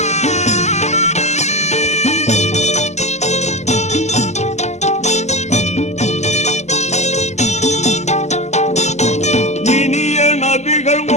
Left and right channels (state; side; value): late; right; 0.33 ms